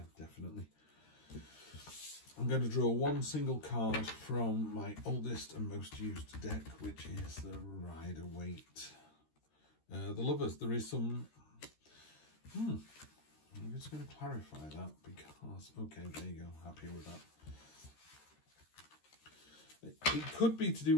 definitely. I'm going to draw 1 single card from my oldest and most used deck, which is the Rider-Waite. The Lovers, there is some... I'm just going to clarify that because... Okay, there you go. Happy with that. It could be to do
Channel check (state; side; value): late; right; 13 ms